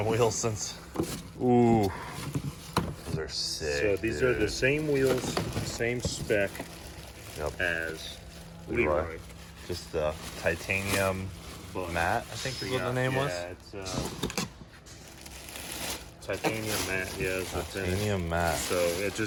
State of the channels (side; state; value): both; identical; correlation 1.00